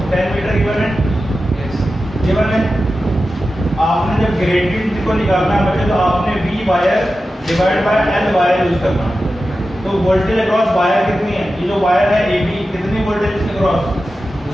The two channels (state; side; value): normal; both; correlation 0.93